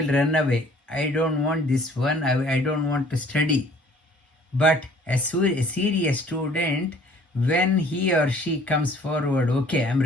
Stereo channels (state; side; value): normal; both; correlation 0.55